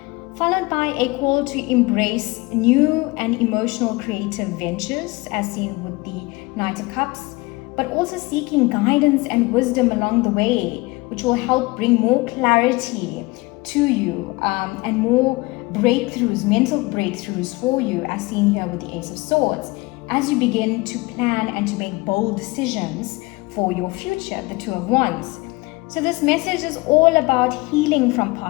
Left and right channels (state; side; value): quieter; right; 23.5 dB